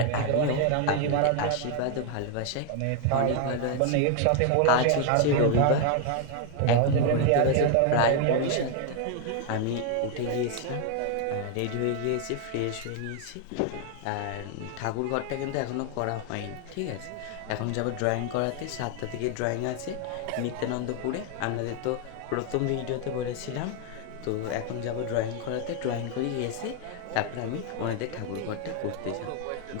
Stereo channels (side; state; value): both; different; correlation 0.00